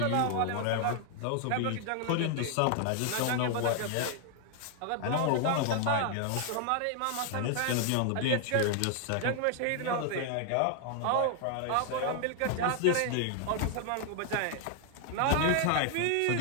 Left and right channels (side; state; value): both; different; correlation 0.00